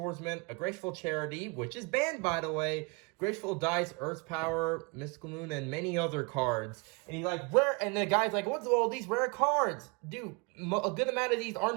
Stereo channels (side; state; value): left; quieter; 29.5 dB